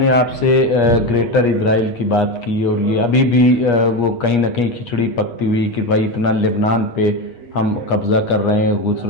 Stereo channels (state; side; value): late; right; 8.4 ms